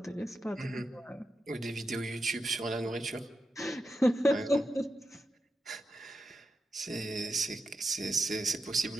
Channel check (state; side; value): normal; both; correlation 0.88